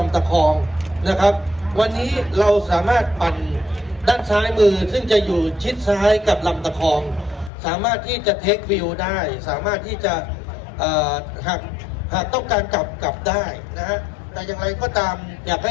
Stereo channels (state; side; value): drops out; right; at 7.5 s